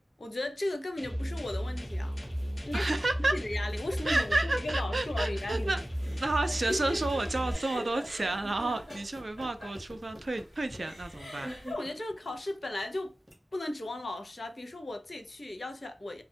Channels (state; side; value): normal; both; correlation 0.96